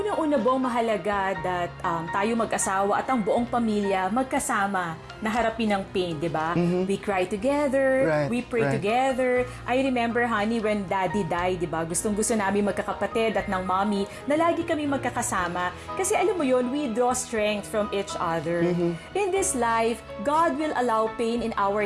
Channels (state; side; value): identical; both; correlation 1.00